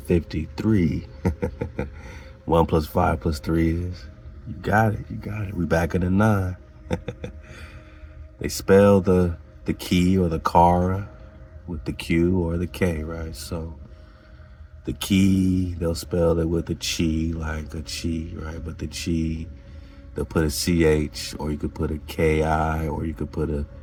1 plus 5 plus 3 is, you got it. We back in the 9. They spell the key or the kara with the Q or the K, right? So the key, they'll spell it with a chi, like a chi, right? But the chi, they'll put a CH, or you could put a KI, or you could put a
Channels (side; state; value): both; identical; correlation 1.00